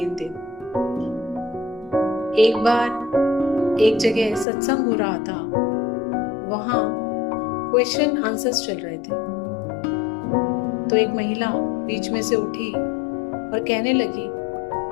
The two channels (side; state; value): right; drops out; at 4.5 s